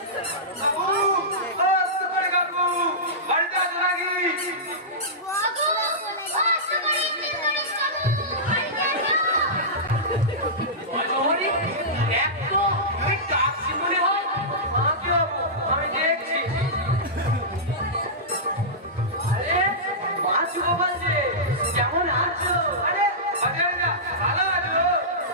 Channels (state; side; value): normal; both; correlation -0.16